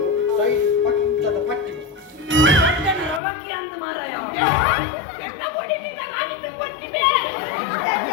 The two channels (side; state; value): right; drops out; at 3.2 s